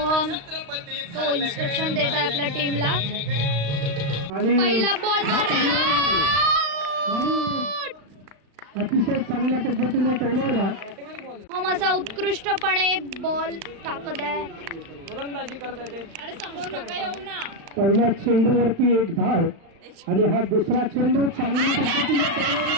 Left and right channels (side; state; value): left; late; 35 ms